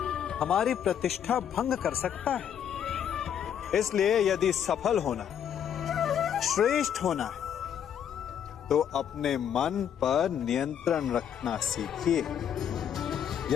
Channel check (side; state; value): right; quieter; 8.9 dB